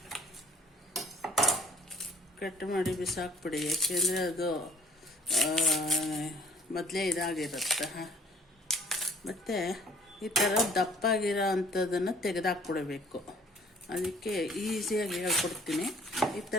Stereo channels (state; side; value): normal; both; correlation 0.57